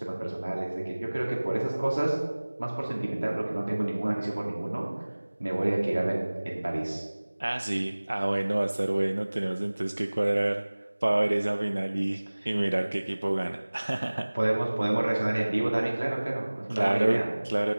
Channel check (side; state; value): both; inverted; correlation -1.00